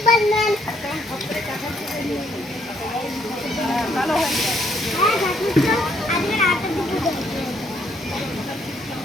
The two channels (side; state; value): both; normal; correlation 0.70